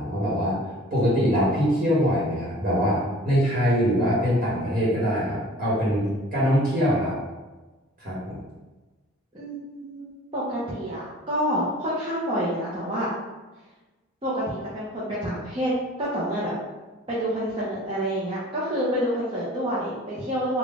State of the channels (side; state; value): both; normal; correlation 0.47